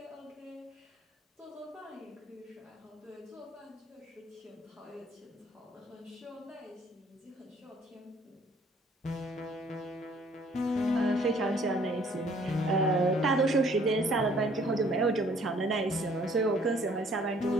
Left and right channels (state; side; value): normal; both; correlation 0.59